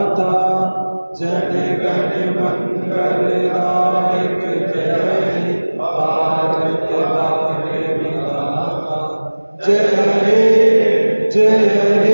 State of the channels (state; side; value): inverted; both; correlation -1.00